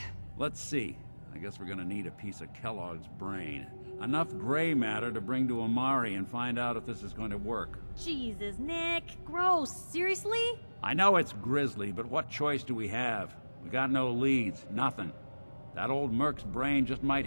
Let's see. I guess we're gonna need a piece of Kellogg's brain. Enough gray matter to bring to Amari and find out if this is going to work. Jesus, Nick. Gross. Seriously? I know it's grisly, but what choice do we have? We got no leads, nothing. That old Merc's brain just might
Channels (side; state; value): both; inverted; correlation -1.00